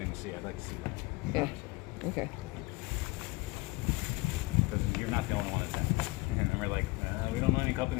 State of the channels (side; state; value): right; quieter; 23.3 dB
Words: to see. I'd like to see that. Yeah. Okay. Because you're not the only one that's happening. And then we're like, we don't know any